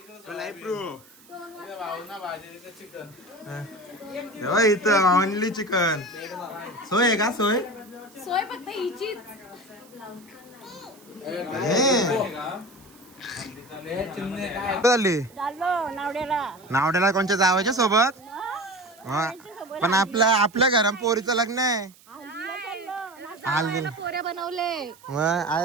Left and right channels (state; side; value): noise; right; hiss, 26 dB below the sound